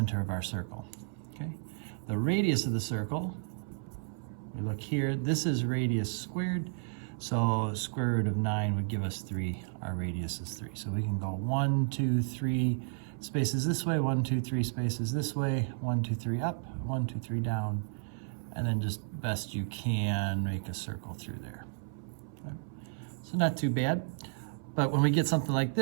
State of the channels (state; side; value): silent; left; 56 dB below the other